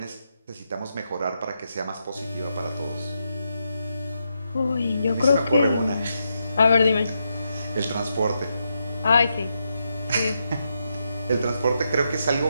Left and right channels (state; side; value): inverted; both; correlation -0.83